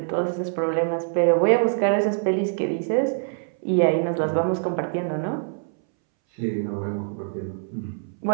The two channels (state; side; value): silent; left; 62 dB below the other